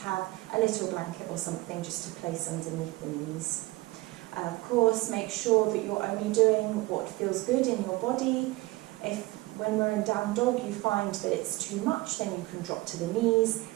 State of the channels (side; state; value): left; quieter; 20.5 dB